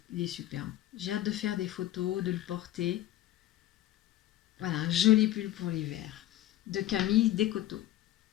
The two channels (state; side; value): quieter; right; 13.9 dB